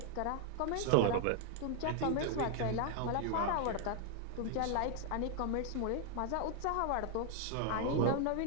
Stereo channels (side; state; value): both; different; correlation 0.00